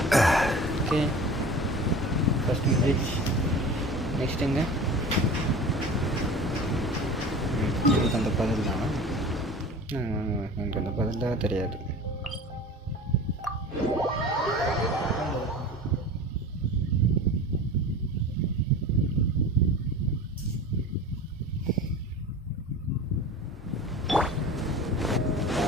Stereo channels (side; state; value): both; normal; correlation 0.37